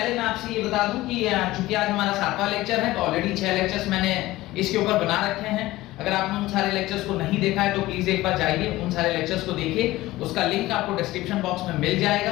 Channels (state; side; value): quieter; right; 17.6 dB